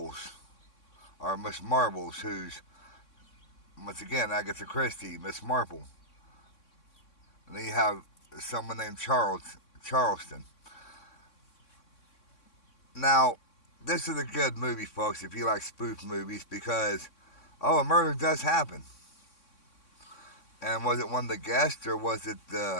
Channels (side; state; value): right; late; 3.6 ms